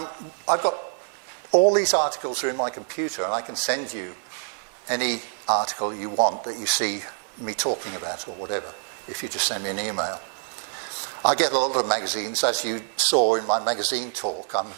got all these articles are in my computer, and I can send you any article you want that you see me talking about or whatever, if you just send me an email. I get a lot of magazines, as you saw in my magazine talk. I'm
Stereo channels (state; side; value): silent; left; 61 dB below the other